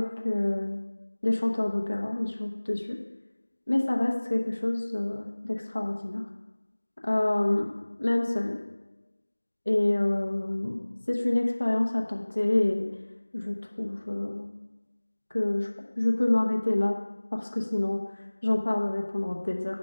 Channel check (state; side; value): inverted; both; correlation -1.00